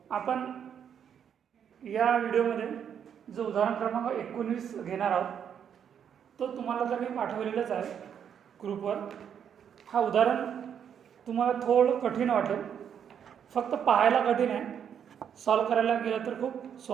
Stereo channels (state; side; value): quieter; left; 8.3 dB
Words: आपण या व्हिडिओमध्ये जो उदाहरण क्रमांक 19 घेणार आहोत तो तुम्हाला तर मी पाठवलेलाच आहे ग्रुपवर। हा उदाहरण तुम्हाला थोडं कठीण वाटेल, फक्त पाहायला कठीण आहे, सॉल्व करायला गेलं तर खूप